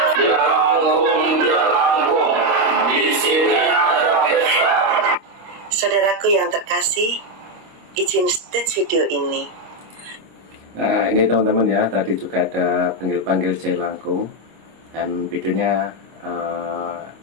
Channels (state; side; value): late; left; 26 ms